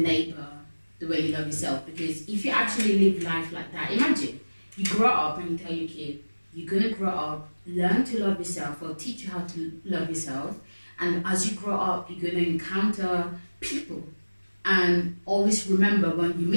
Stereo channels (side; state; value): both; inverted; correlation -1.00